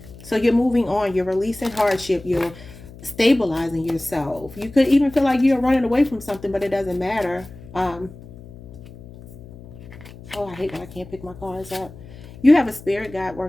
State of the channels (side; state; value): left; noise; hum, 18 dB below the sound